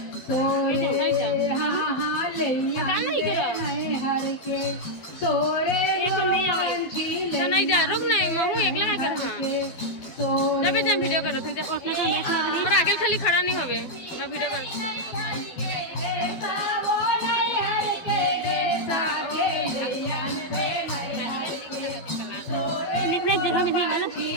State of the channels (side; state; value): right; late; 12 ms